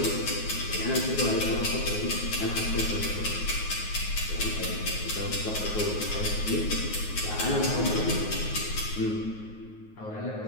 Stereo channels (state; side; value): late; right; 9.5 ms